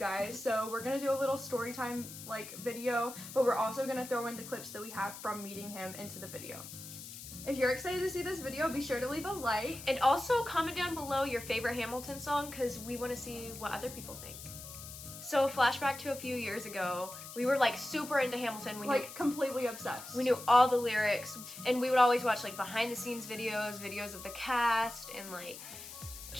So we're gonna do a little story time like video, but we're also gonna throw in the clips that we have from meeting him into the video. If you're excited to see this video, be sure to leave a like. And also comment down below your favorite Hamilton song, because we want to see what other people think. So flashback to a few years ago, we were like super into Hamilton. We like knew, completely obsessed. We knew all the lyrics, and we would always watch like behind the scenes videos of the cast, and like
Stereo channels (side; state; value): left; noise; hiss, 12 dB below the sound